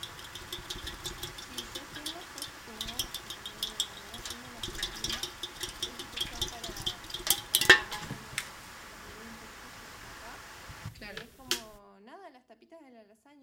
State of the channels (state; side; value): identical; both; correlation 1.00